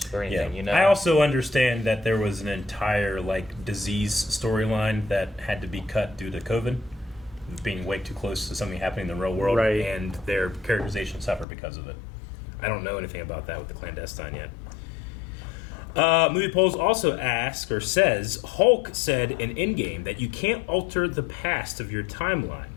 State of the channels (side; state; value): right; drops out; at 11.5 s